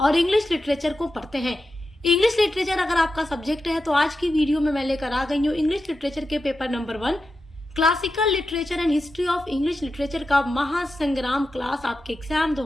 इंग्लिश लिटरेचर को पढ़ते हैं। इंग्लिश लिटरेचर अगर आपका सब्जेक्ट है तो आज की वीडियो में मैं लेकर आ गई हूँ इंग्लिश लिटरेचर के paper number 1 classical literature and history of English literature का महासंग्राम क्लास आपके एग्जाम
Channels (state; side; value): normal; both; correlation 0.90